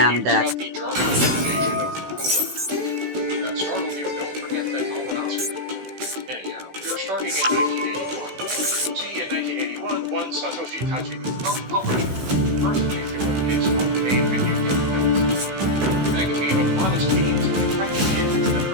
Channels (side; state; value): left; late; 16 ms